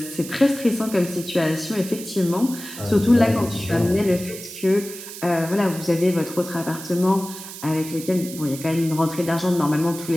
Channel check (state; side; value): noise; right; hiss, 12 dB below the sound